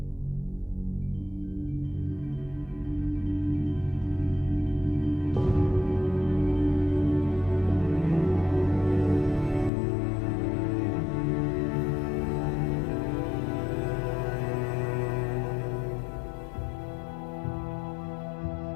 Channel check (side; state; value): right; drops out; at 9.7 s